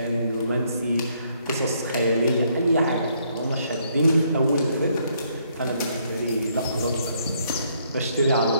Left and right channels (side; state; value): both; inverted; correlation -0.70